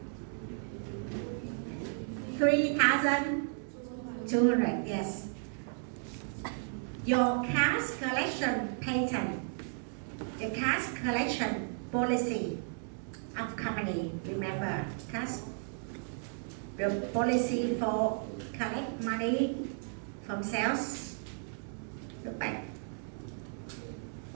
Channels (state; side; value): silent; left; 55 dB below the other